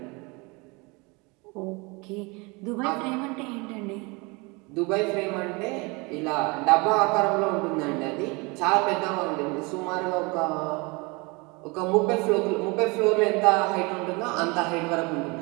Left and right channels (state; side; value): quieter; left; 27.4 dB